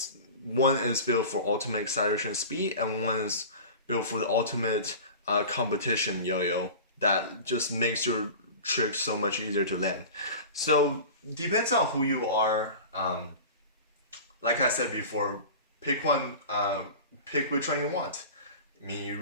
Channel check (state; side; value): inverted; both; correlation -0.35